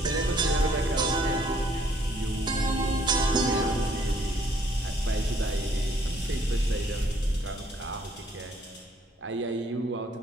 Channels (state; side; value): normal; both; correlation 0.64